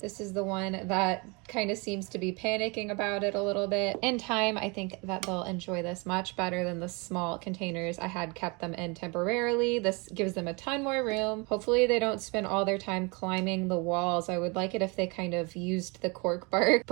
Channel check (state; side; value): quieter; left; 29.3 dB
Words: This is the one that kind of seems to be panicking about it a little bit. In time, I think that they'll enjoy this much better than the small containers I had kept them in temporarily. This gives them a ton more room. Hopefully they don't spend all their time climbing the walls. I would like it if they kind of used the cork bark,